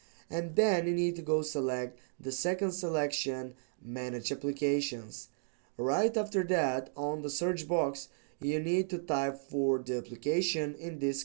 and then you need to go select the second selection, manage applications. Right after that, on the search box, you need to type for the application. In this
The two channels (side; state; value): left; silent; digital silence